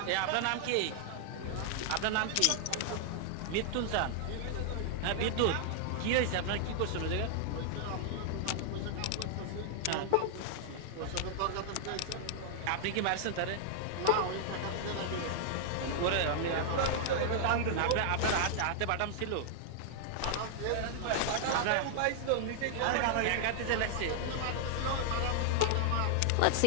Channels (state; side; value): different; both; correlation -0.01